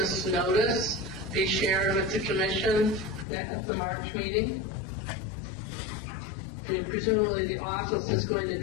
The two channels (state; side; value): drops out; right; at 3.2 s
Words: notice be shared with the commission at the March meeting? I mean, presumably the office is going to